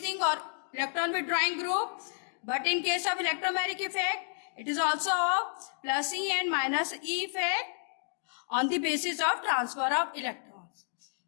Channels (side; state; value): right; silent; digital silence